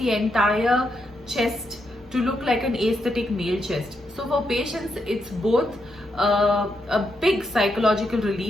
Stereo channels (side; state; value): both; normal; correlation 0.81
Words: entire chest to look like an aesthetic male chest. So for patients, it's both a big psychological